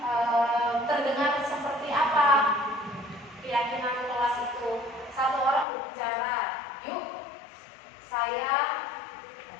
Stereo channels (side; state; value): right; drops out; at 5.7 s